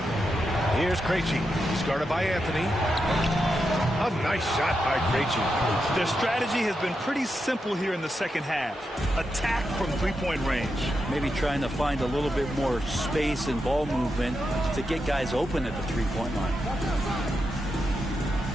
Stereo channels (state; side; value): normal; both; correlation 0.86